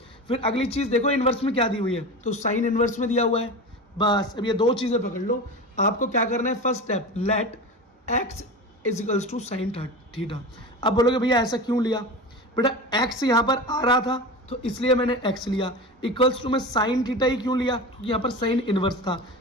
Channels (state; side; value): normal; both; correlation 0.28